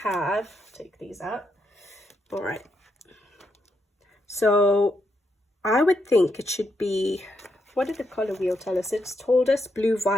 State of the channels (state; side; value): normal; both; correlation 0.80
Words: have, take these out, all right. So I would think it should be, what did the color wheel tell us? It's told us blue